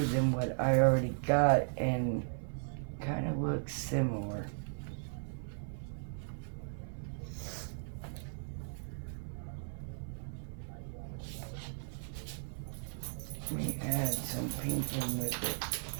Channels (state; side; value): silent; left; 53 dB below the other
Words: than what I already got and kind of looks similar. Let me add some pink in with it.